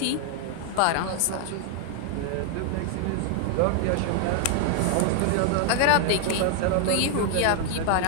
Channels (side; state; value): both; different; correlation 0.00